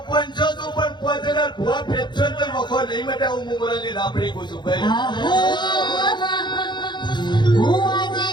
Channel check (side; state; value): right; late; 0.22 ms